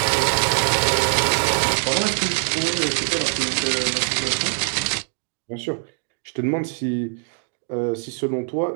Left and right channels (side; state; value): left; silent; digital silence